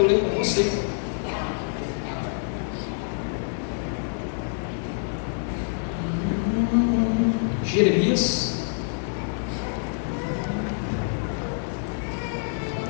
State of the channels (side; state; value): right; silent; digital silence